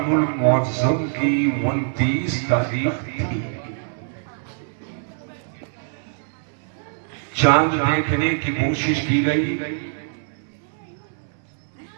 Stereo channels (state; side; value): silent; left; 63 dB below the other